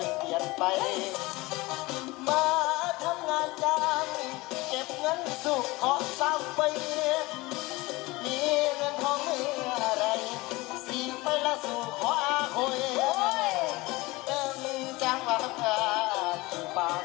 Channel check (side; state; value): right; quieter; 21.7 dB